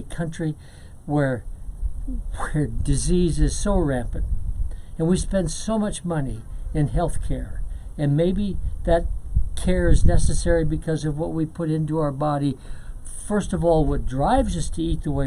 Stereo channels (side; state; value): both; identical; correlation 1.00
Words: country where disease is so rampant, and we spend so much money in health care, and maybe that care is necessary because of what we put into our body. First of all, what drives us to eat the